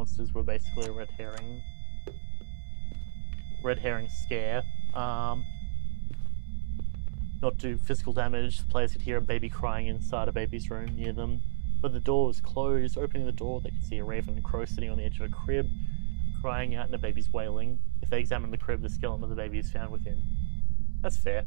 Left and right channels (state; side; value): silent; left; 58 dB below the other